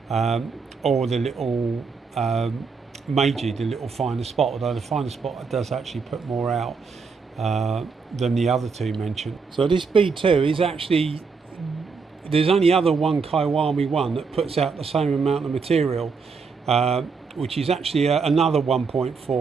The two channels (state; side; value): quieter; left; 5.0 dB